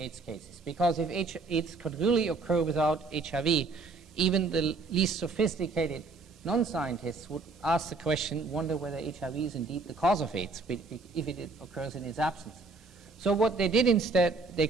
AIDS cases. Because if AIDS could really occur without HIV, even the least sophisticated non-scientists would ask the question, wonder whether HIV is indeed the cause of AIDS, if it occurs in its absence. So what they did instead, they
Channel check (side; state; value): left; quieter; 3.8 dB